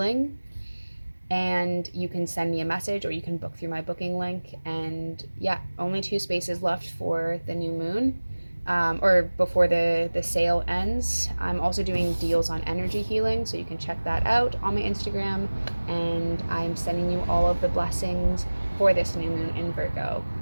And you can send me a message or you can book through my booking link. And yeah, only 2 spaces left for the new moon. Or before the sale ends. I'm also doing deals on energy healing, so you can check that out on my Instagram. And I'm sending you all of the blessings for this new moon in Virgo.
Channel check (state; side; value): inverted; both; correlation -1.00